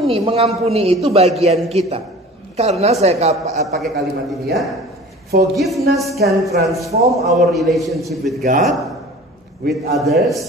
Mengampuni itu bagian kita. Karena saya pakai kalimat ini ya. Forgiveness can transform our relationship with God, with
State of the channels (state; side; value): normal; both; correlation 0.42